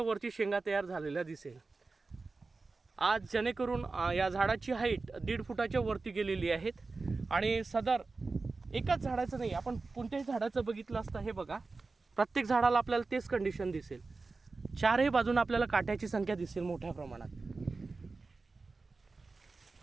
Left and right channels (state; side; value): quieter; left; 3.9 dB